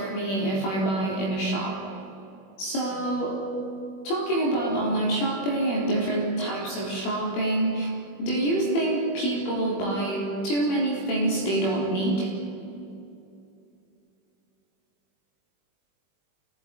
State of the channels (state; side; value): late; right; 21 ms